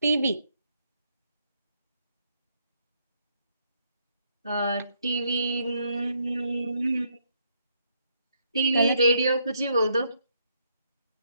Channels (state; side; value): inverted; both; correlation -0.74